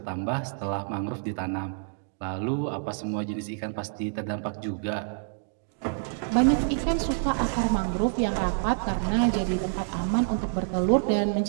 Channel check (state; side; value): silent; left; digital silence